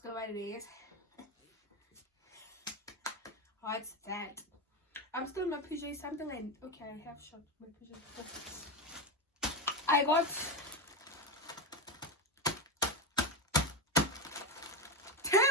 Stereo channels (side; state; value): both; normal; correlation 0.12